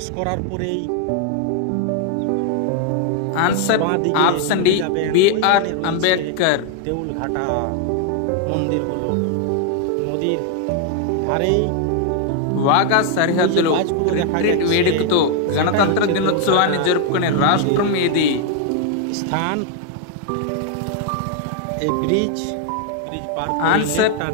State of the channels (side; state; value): both; different; correlation 0.00